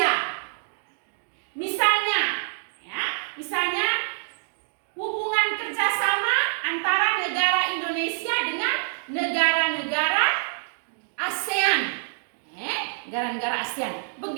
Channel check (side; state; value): left; silent; digital silence